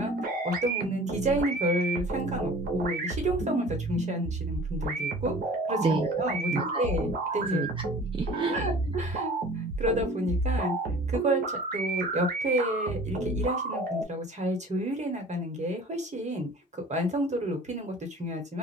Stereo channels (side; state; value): both; normal; correlation 0.45